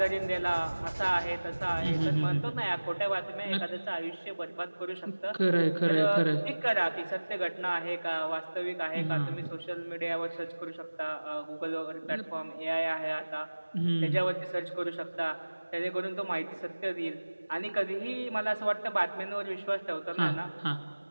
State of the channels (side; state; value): both; inverted; correlation -1.00